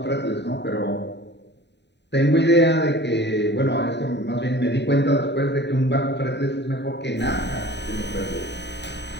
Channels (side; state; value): right; late; 0.50 ms